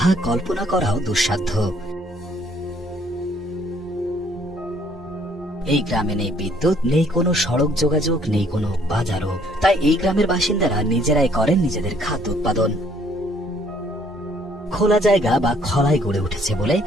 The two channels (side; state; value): both; normal; correlation 0.63